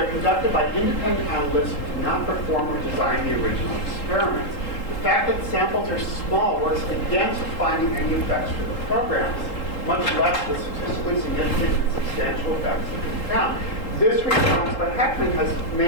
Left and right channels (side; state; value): right; late; 3.8 ms